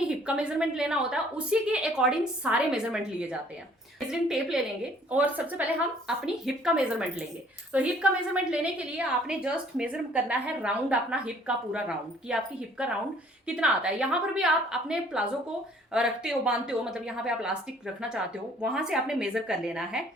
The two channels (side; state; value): both; normal; correlation 0.58